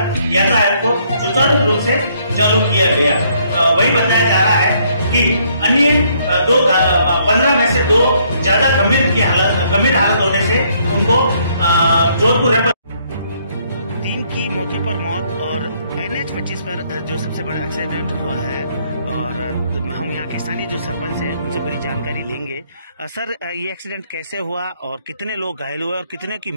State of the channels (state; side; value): inverted; both; correlation -0.68